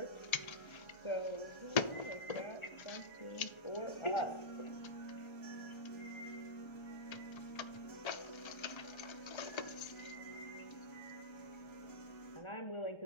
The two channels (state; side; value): late; right; 1.3 ms